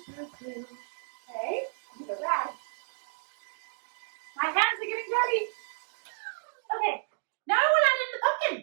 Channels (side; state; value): left; silent; digital silence